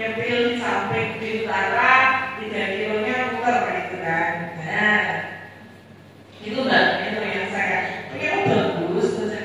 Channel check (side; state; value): both; identical; correlation 1.00